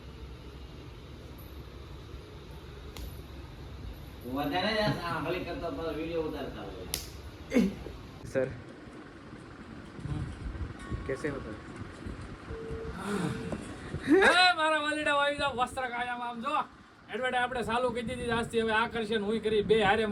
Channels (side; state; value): both; identical; correlation 1.00